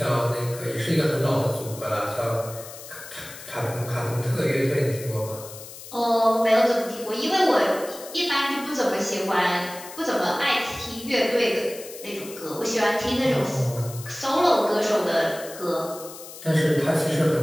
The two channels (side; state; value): left; noise; hiss, 14 dB below the sound